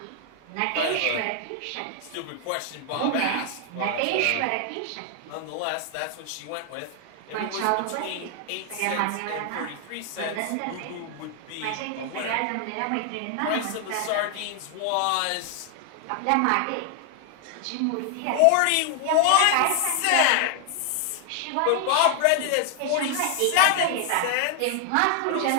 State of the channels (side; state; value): both; different; correlation 0.00